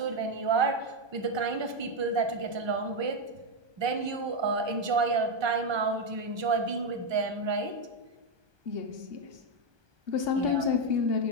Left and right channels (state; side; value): late; left; 1.2 ms